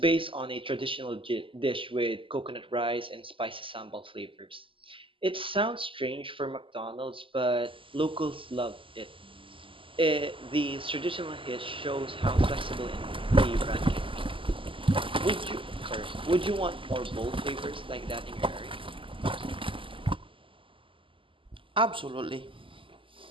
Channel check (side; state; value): left; late; 0.25 ms